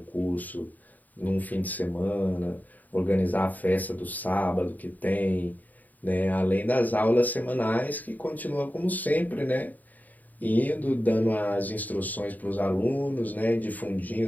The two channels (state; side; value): late; right; 0.082 ms